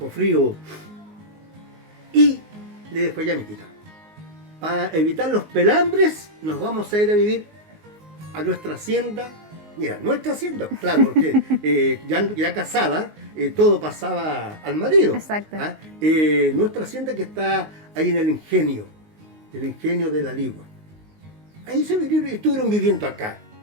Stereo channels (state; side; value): late; left; 19 ms